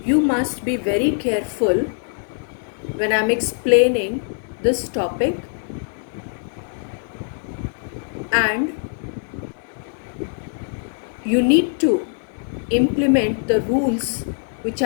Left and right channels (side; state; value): right; silent; digital silence